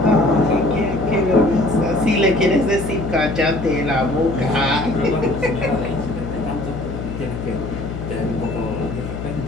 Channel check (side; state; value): left; noise; hum, 7 dB below the sound